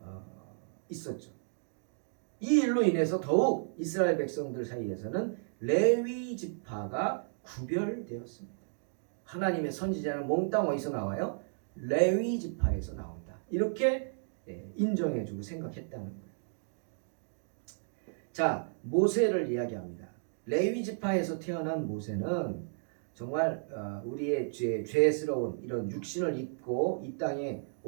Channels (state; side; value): silent; left; digital silence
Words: 있었죠. 이 일로 인해서 더욱 이스라엘 백성들 사이에서는 레위 지파가 구별되었습니다. 하나님의 선지자는 몽땅 어디서 나와요? 레위 지파에서 나온다. 이렇게 인정해주고 생각했다는 거예요. 자, 모세를 이야기합니다. 레위 지파에서 태어난 모세는 정말 우리의 죄스러운 이런 육신을 입고 이 땅에